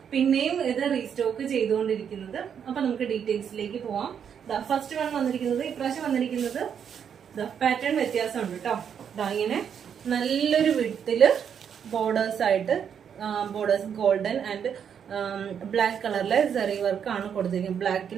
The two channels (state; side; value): quieter; left; 7.9 dB